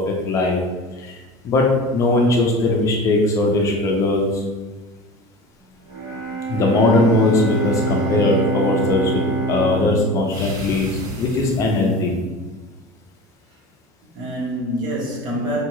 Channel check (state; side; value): normal; both; correlation 0.34